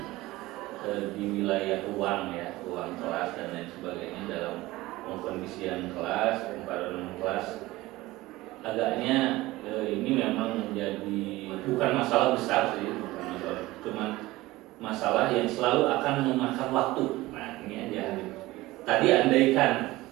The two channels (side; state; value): left; quieter; 18.8 dB